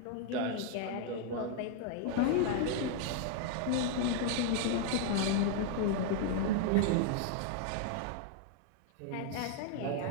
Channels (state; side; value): different; both; correlation 0.00